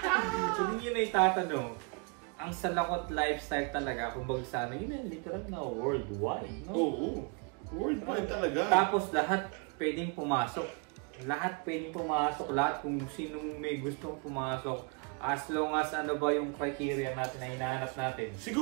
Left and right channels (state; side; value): quieter; left; 34.6 dB